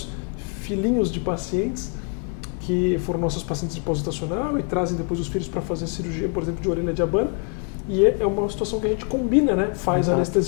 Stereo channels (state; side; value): quieter; right; 39.3 dB